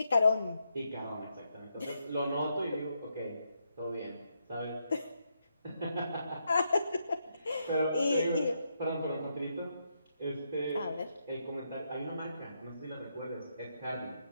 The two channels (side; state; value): both; inverted; correlation -0.81